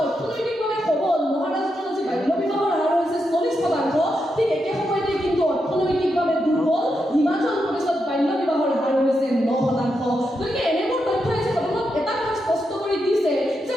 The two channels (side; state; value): both; normal; correlation 0.84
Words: অৰ্থনৈতিকভাৱে সবল মহাৰাষ্ট্ৰত আজি বাল্য বিবাহৰ হাৰ হৈছে 40%, ঠিক একে সময়তে কিন্তু অৰ্থনৈতিকভাৱে দুৰ্বল হিমাচল প্ৰদেশত বাল্য বিবাহৰ হাৰ হৈছে 9%। গতিকে এনেবোৰ তথ্যই যে আপোনাক এটা কথা স্পষ্ট কৰি দিছে যে